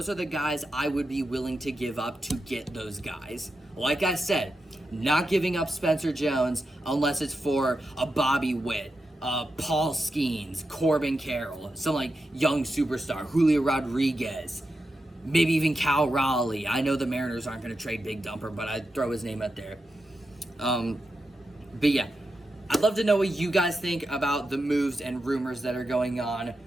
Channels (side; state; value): both; normal; correlation 0.88